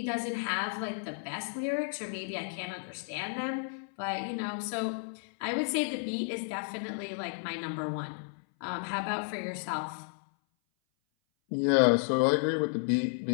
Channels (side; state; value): right; silent; 56 dB below the other